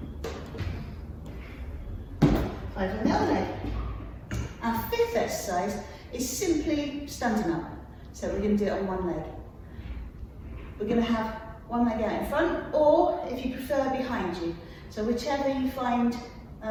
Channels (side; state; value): both; identical; correlation 1.00